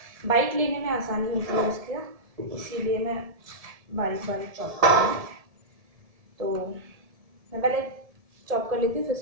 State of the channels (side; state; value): left; late; 1.7 ms